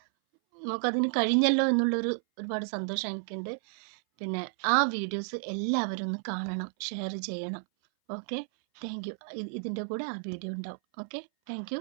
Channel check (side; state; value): left; silent; 57 dB below the other